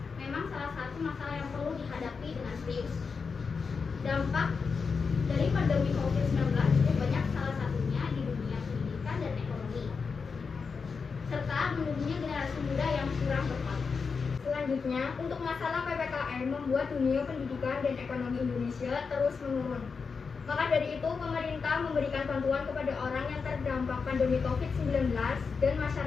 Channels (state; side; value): quieter; right; 5.2 dB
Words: memang salah satu masalah yang perlu dihadapi dengan serius. Dampak dari pandemi COVID-19 cukup banyak, salah satunya di dunia pendidikan dan ekonomi, serta menurunnya generasi muda yang kurang berkualitas. Selanjutnya, untuk masalah PPKM membuat dunia pendidikan dan ekonomi Indonesia terus menurun. Maka dari itu, pemerintah memberikan bantuan kepada orang yang terdampak pandemi COVID-19 dan